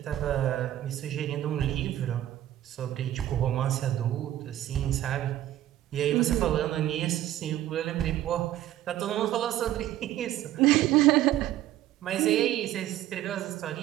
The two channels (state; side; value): quieter; left; 13.3 dB